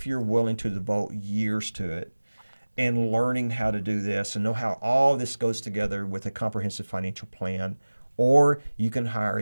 you're willing to devote years to it and learning how to do this and know how all this goes together with a comprehensive financial plan. Or you can hire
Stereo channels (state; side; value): inverted; both; correlation -1.00